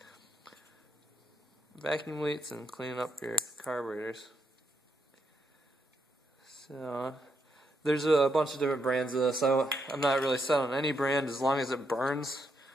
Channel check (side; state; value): both; normal; correlation 0.79